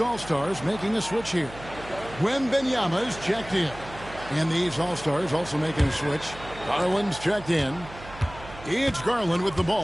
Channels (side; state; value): right; noise; hum, 16 dB below the sound